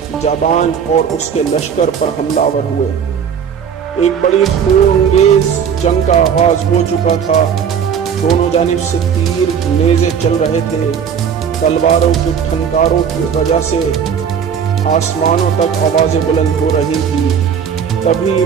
جابان اور اس کے لشکر پر حملہ آور ہوئے۔ ایک بڑی خونریز جنگ کا آغاز ہو چکا تھا۔ دونوں جانب سے تیر نیزے چل رہے تھے۔ تلواروں کی ٹھنکاروں کی وجہ سے آسمانوں تک آوازیں بلند ہو رہی تھی۔ تبھی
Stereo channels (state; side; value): quieter; left; 7.5 dB